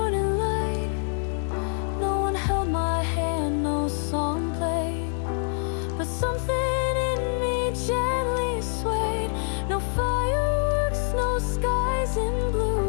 light. No one held my hand, no song played, but something in me gently swayed. No fireworks, no skies in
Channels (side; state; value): right; silent; digital silence